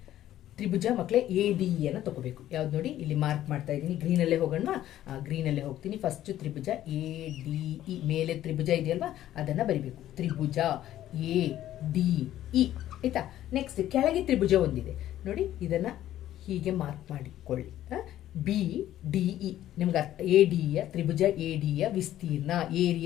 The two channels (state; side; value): quieter; right; 12.8 dB